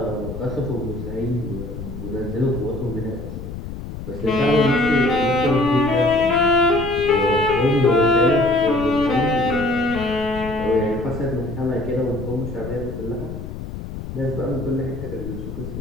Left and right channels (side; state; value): left; noise; rumble, 9 dB below the sound